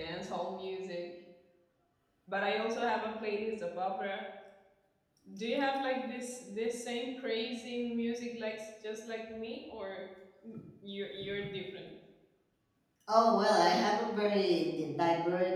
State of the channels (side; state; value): both; identical; correlation 1.00